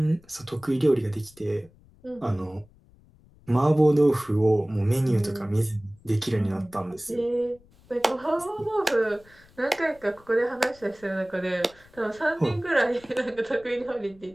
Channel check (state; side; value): noise; left; rumble, 27 dB below the sound